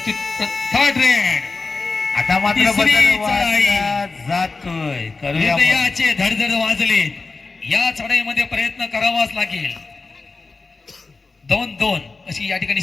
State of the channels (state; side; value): quieter; right; 3.9 dB